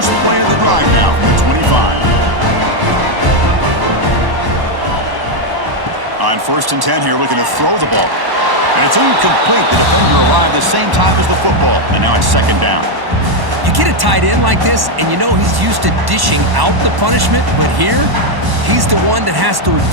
play of the drive now from the 25. On 1st and 10 here, looking to throw the ball. And it's incomplete. The defender arrived the same time as the football. And now it's 2nd down. You get a tight end like this, and you know he's used to dishing out the punishment, but here, he's the one that has to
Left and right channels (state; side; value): late; left; 1.1 ms